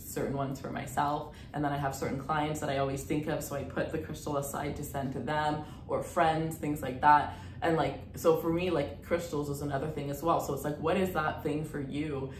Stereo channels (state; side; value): identical; both; correlation 1.00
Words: ones for myself, and then I have certain clients that I always think of, so I put the crystal aside to send to them, or friends, things like that. And like, so for me, like crystals is another thing as well. So it's like, what is that thing for you,